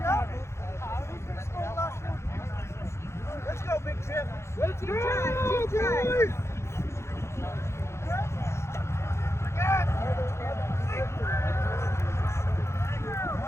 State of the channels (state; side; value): late; right; 0.13 ms